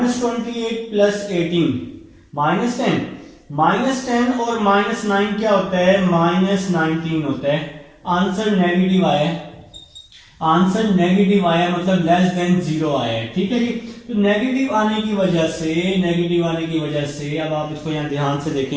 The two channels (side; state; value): both; identical; correlation 1.00